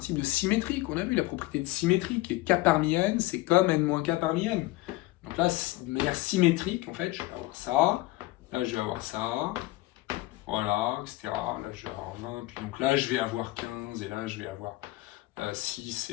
de symétrie qu'on a vu, la propriété de symétrie, qui est K parmi N, c'est comme N moins K parmi N. Donc là, de manière symétrique, en fait, je vais avoir ça, là je vais avoir ça, voilà, etc. Là je vais avoir 20, puis donc là je vais avoir 15, et là je vais avoir 6,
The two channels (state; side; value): quieter; right; 18.7 dB